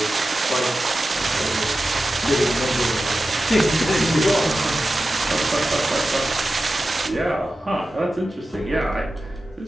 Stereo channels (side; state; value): both; normal; correlation 0.93